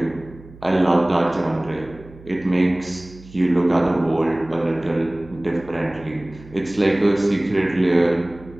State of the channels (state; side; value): noise; right; hum, 20 dB below the sound